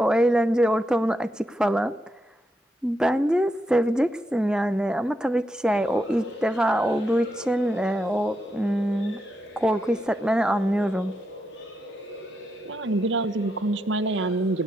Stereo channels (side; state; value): both; normal; correlation 0.83